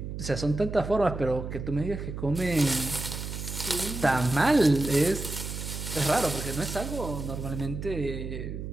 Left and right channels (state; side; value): noise; right; hum, 7 dB below the sound